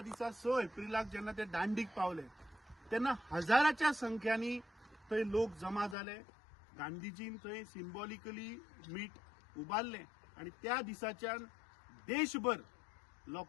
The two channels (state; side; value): drops out; right; at 6.0 s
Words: दिसा 6 एप्रिलाक जेन्ना ते दांडीक पावले तेन्ना हजाराच्या संख्यांनी थंय लोक जमा जाले गांधीजीन थंय सिंबॉलिकली मीठ उबारले आणि त्या दिसाच्यान देशभर